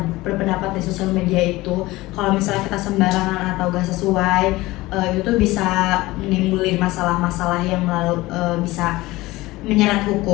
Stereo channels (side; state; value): right; quieter; 19.4 dB